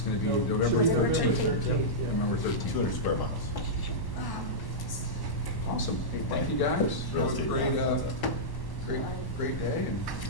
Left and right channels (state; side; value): late; right; 1.0 ms